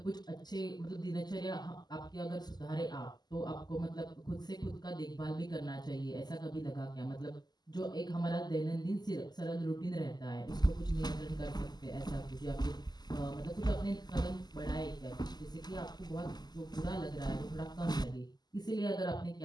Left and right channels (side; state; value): right; late; 0.20 ms